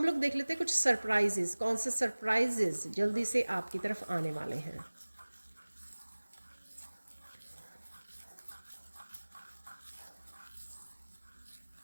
लोग देख लेते हैं कुछ सरप्राइजेस, कौन से सरप्राइजेस जल्दी से आपकी तरफ आने वाले हैं।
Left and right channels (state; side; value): inverted; both; correlation -1.00